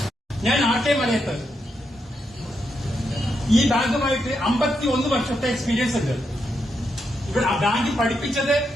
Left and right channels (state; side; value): normal; both; correlation 0.82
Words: ഞാൻ ആട്ടയമലയത്ത് ഈ ബാങ്കുമായിട്ട് 51 വർഷത്തെ എക്സ്പീരിയൻസ് ഉണ്ട്. ഇവിടെ ആ ബാങ്കിൽ പഠിപ്പിച്ചത്